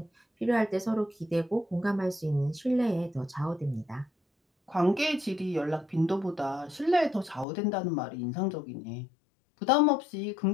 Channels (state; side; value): drops out; right; at 7.5 s